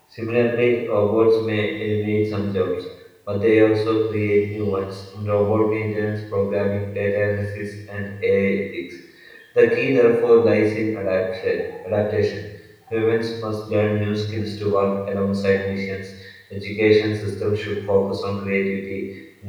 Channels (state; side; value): identical; both; correlation 1.00